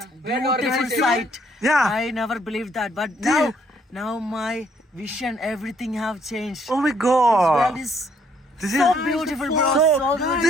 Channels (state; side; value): normal; both; correlation 0.67